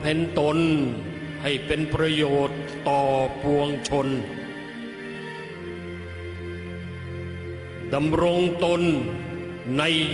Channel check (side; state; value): both; identical; correlation 1.00